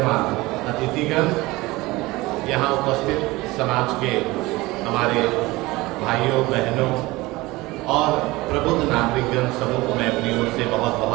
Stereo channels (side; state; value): left; quieter; 20.8 dB